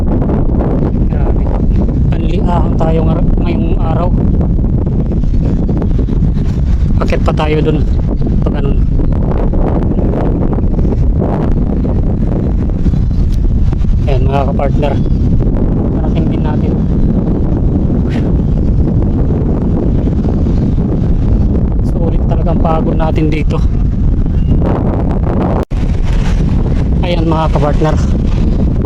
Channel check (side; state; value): both; identical; correlation 1.00